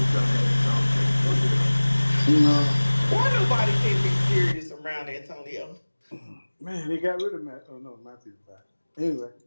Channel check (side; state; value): both; inverted; correlation -1.00